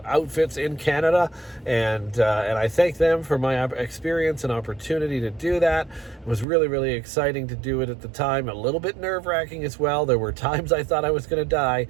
outfits in Canada, and I thank them for my experience and opportunity to do that. It was really, really exciting to do it at the time. A little bit nerve-wracking as well. There were times I thought I was going to die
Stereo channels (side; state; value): left; drops out; at 6.5 s